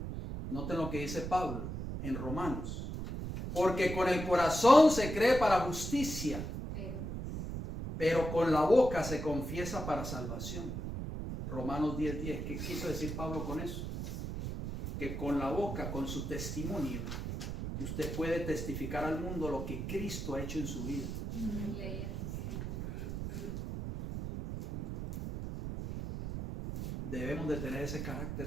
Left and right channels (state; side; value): noise; right; rumble, 5 dB below the sound